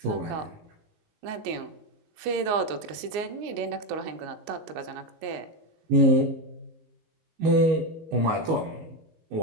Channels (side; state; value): left; late; 19 ms